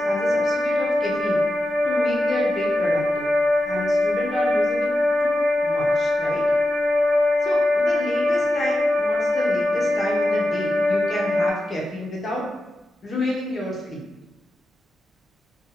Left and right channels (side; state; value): both; normal; correlation 0.91